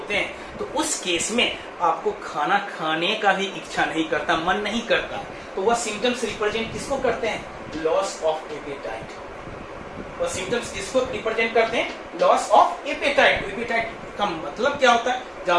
हैं तो उस केस में आपको खाना खाने का भी इच्छा नहीं करता, मन नहीं करता। तो वह सिम्टम्स रिप्रेजेंट किसको करते हैं? Loss of apatite. वह सिम्टम्स किसको रिप्रेजेंट करते हैं? Loss of apatite. एपेटाइट का मतलब क्या होता है?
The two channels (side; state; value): both; identical; correlation 1.00